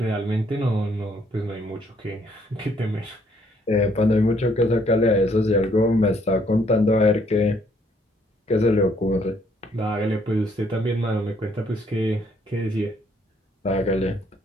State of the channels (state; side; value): normal; both; correlation 0.67